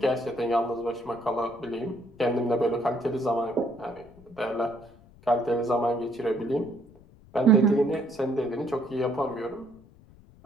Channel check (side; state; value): left; noise; rumble, 25 dB below the sound